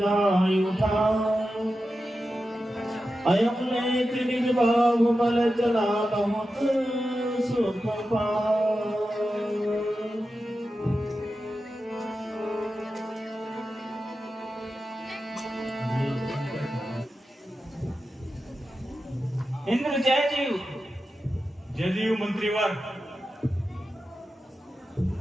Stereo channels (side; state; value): both; normal; correlation 0.91